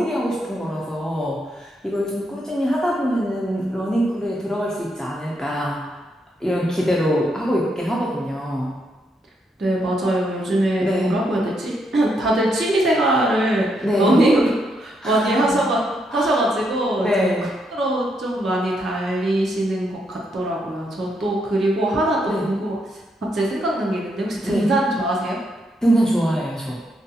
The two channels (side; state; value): both; normal; correlation 0.78